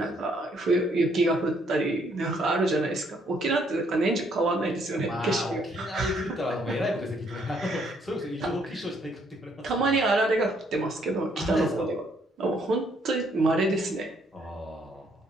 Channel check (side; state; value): both; normal; correlation 0.68